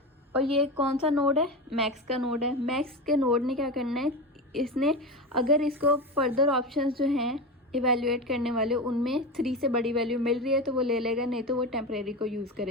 और ये कौन सा नोड है, मैक्स का नोड है। मैक्स के नोड ने क्या करना है, इसने अगर इसको फर्दर ऑप्शंस जो हैं इवेल्युएट करने वाले, उनमें 3 से बड़ी वैल्यू मिल रही है तो वो ले लेगा, नहीं तो वो टेम्परेरी को यूज़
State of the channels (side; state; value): both; normal; correlation 0.22